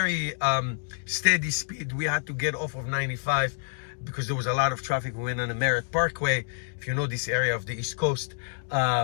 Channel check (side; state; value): right; silent; digital silence